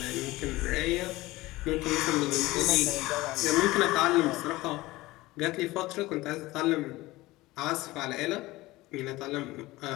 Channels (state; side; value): quieter; right; 19.2 dB